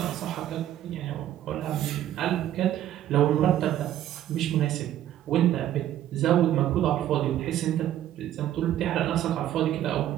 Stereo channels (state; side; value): quieter; left; 12.1 dB